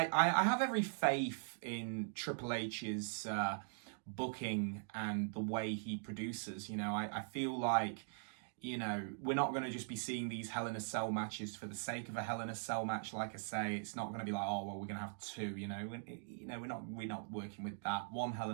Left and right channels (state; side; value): silent; left; digital silence